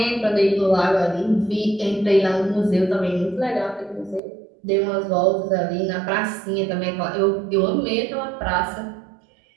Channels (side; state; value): left; drops out; at 4.2 s